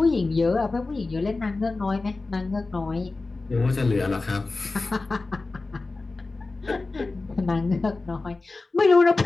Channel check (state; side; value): quieter; right; 3.5 dB